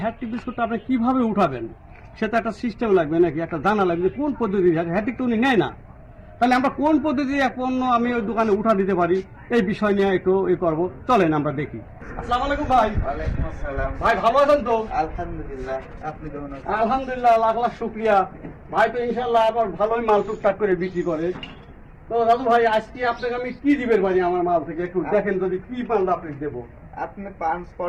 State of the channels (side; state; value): both; identical; correlation 1.00